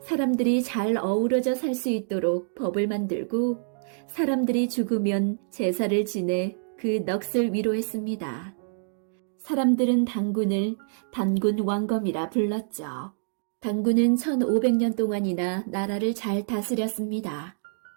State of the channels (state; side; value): silent; left; digital silence